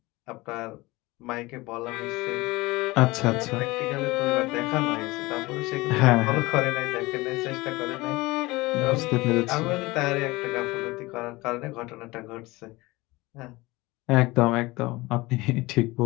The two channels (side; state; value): right; quieter; 21.4 dB